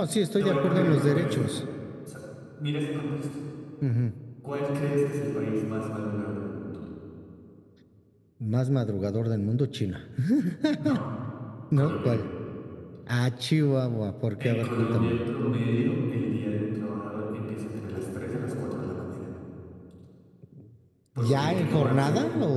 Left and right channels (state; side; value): identical; both; correlation 1.00